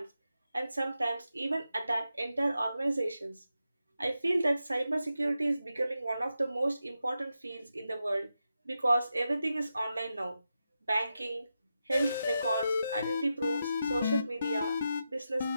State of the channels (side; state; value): both; inverted; correlation -0.88